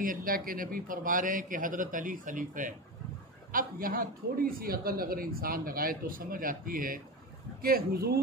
اللہ کے نبی فرما رہے ہیں کہ حضرت علی خلیفہ ہے۔ اب یہاں تھوڑی سی عقل اگر انسان لگائے تو سمجھ آتی ہے کہ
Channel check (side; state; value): both; normal; correlation 0.22